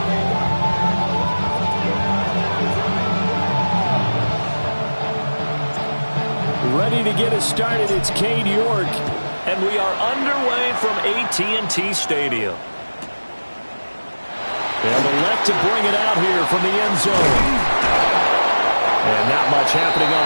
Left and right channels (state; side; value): inverted; both; correlation -1.00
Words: Ready to get us started, it's Cade York. And we are underway from AT&T Stadium. They'll elect to bring it out here from the end zone. And not much happening on